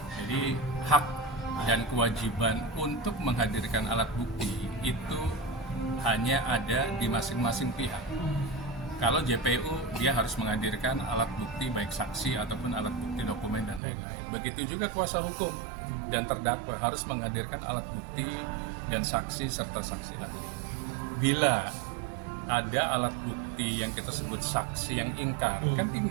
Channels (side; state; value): left; drops out; at 13.8 s